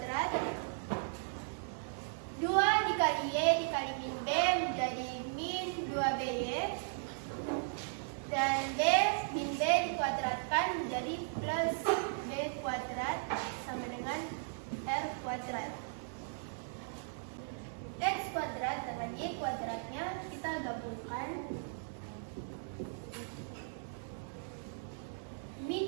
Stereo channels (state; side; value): silent; left; digital silence